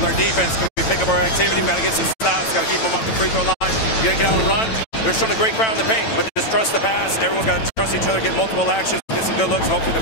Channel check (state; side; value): late; right; 9.0 ms